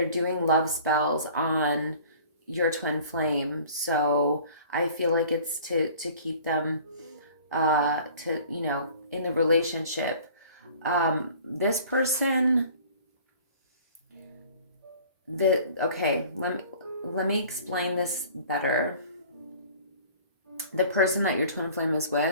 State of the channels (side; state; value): both; inverted; correlation -0.48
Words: doing love spells on your twin flame. So I feel like it's to keep them, to, you know, in the relationship. This person, okay, let me explain this better. The person that your twin flame is